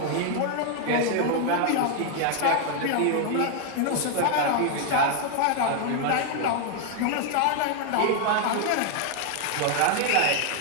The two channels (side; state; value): both; different; correlation 0.00